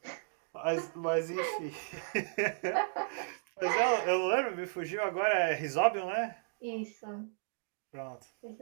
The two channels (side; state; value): left; silent; digital silence